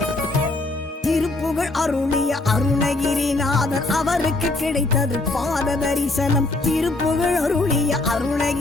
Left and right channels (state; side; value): quieter; right; 3.0 dB